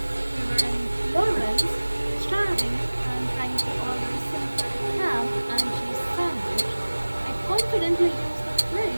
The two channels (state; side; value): inverted; both; correlation -1.00